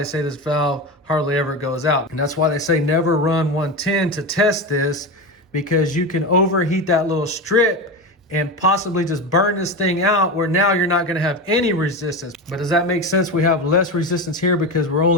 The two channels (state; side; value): normal; both; correlation 0.20